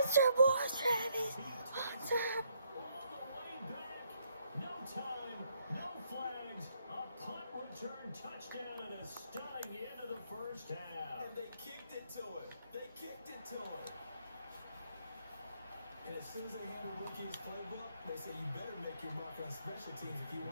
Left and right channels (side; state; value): both; inverted; correlation -0.72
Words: boy, Travis! Hunter! All the way back. No time, no flags. A punt return touchdown and a stunning end of the first half. And they kicked it to him. They kicked it to him. And as soon as they hand a rookie his playbook, they say you better make your mark on special teams if you